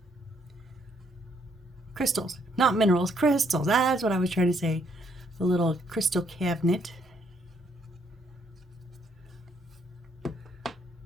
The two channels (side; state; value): both; normal; correlation 0.70